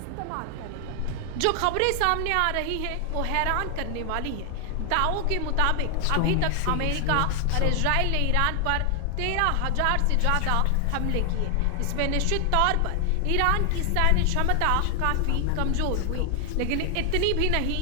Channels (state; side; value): different; both; correlation 0.00